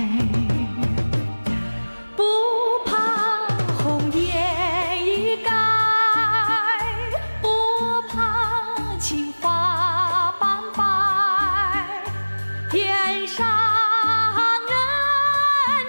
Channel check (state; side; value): inverted; both; correlation -1.00